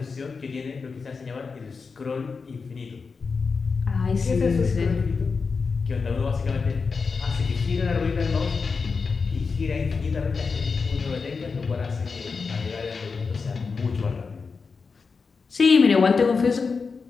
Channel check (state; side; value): quieter; right; 4.9 dB